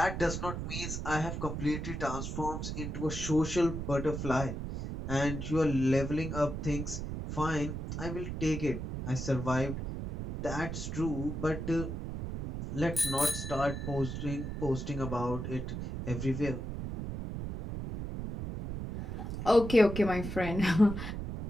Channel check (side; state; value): right; noise; rumble, 5 dB below the sound